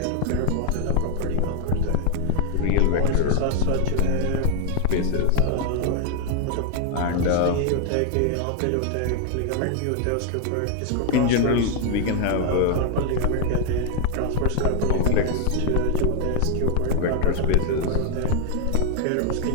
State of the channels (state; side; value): different; both; correlation 0.00